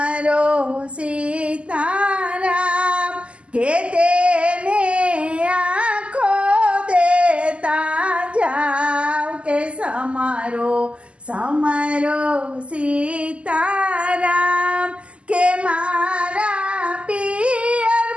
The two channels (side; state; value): left; late; 0.056 ms